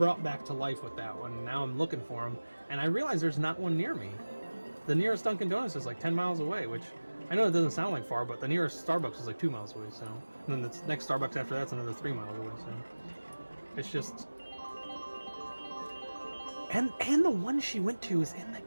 back to life with that one. Now I'm looking for them, and I realize there's not one near me. The nearest Dunkin' Donuts is like 10 miles away, which I know it doesn't sound like far, but the nearest Starbucks is like 2 miles away. So, and then the next Starbucks after that's another 3 miles away. So it's just, and the one she went to is in the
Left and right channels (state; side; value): inverted; both; correlation -1.00